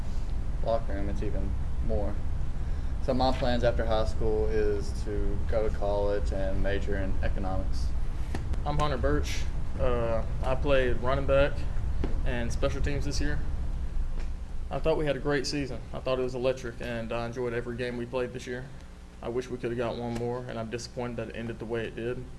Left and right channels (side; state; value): both; identical; correlation 1.00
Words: locker room, it's even more. So my plans after high school is to go to college and major in economics. I'm Hunter Birch. I played running back and special teams this year. I thought we had a great season. I thought it was electric, and I enjoyed every game we played this year. I wish we could have got one more, and I'm disappointed that it ended the way it did.